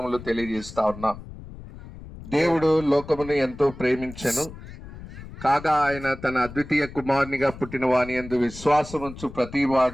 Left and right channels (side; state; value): left; noise; rumble, 15 dB below the sound